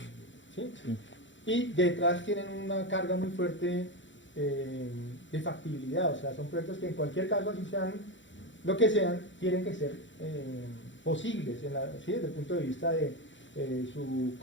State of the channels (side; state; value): right; late; 0.54 ms